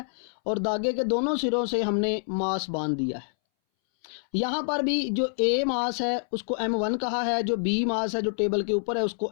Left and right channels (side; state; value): right; silent; 60 dB below the other